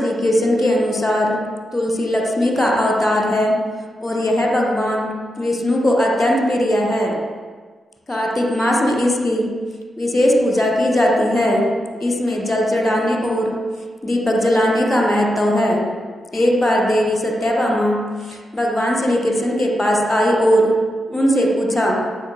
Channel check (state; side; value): normal; both; correlation 0.87